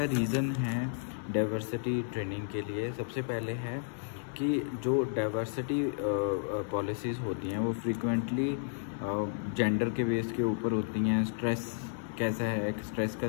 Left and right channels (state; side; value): silent; right; digital silence